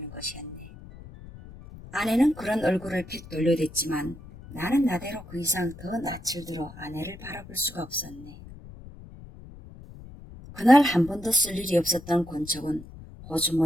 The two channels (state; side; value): noise; left; rumble, 17 dB below the sound